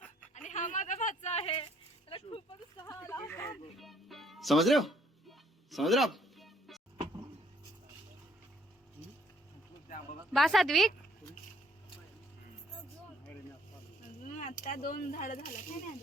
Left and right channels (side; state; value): both; normal; correlation 0.64